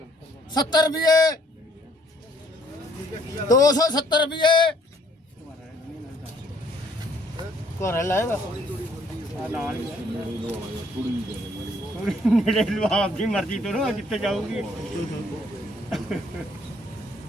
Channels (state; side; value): normal; both; correlation 0.63